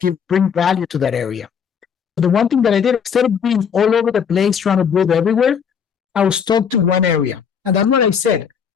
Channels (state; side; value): quieter; right; 7.1 dB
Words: bring value to that area. The one thing that I did, instead of being all over the place trying to build everywhere, I was stuck to one area. And that's what I said,